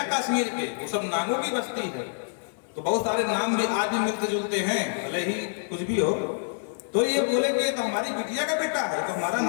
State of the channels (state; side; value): silent; right; digital silence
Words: कश्मीर के, वो सब नागों की बस्ती है। तो बहुत सारे नाम भी आज भी मिलते जुलते हैं, भले ही कुछ भी हो। तो ये बोले कि तो हमारी बिटिया का बेटा है, तो हमारा